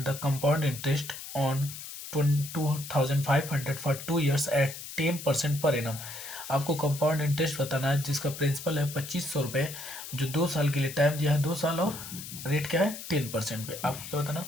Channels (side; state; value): left; noise; hiss, 11 dB below the sound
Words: the compound interest on 2500 for 2 years at 10% per annum. आपको कंपाउंड इंटरेस्ट बताना है जिसका प्रिंसिपल है 2500 रुपये, जो 2 साल के लिए टाइम दिया है 2 साल, और रेट क्या है 10% पे। आपको क्या बताना,